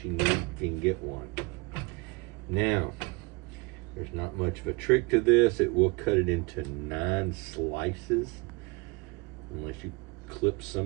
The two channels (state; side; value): quieter; left; 27.5 dB